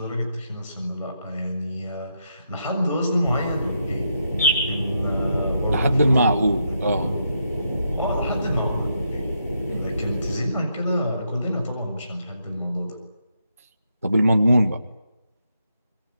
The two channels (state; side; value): inverted; both; correlation -0.80